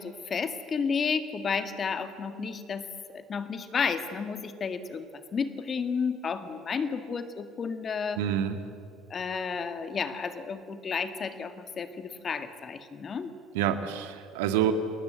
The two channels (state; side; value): normal; both; correlation 0.55